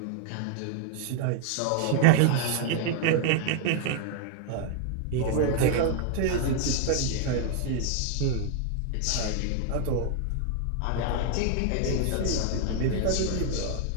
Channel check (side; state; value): both; different; correlation 0.00